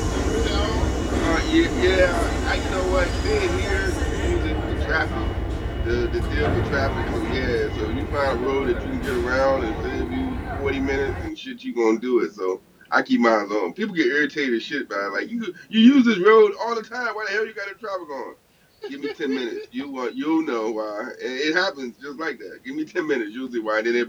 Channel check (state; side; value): identical; both; correlation 1.00